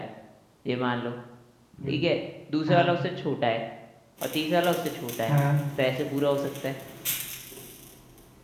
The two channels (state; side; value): identical; both; correlation 1.00